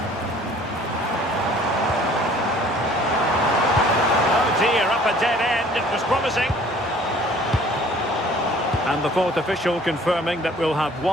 Oh dear, up a dead end. It was promising. And the fourth official confirming that we'll have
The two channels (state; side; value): normal; both; correlation 0.53